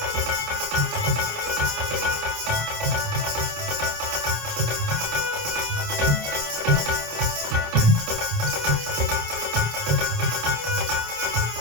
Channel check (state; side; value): late; left; 27 ms